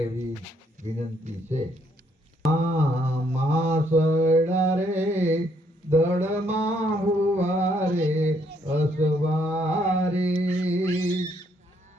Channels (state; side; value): normal; both; correlation 0.70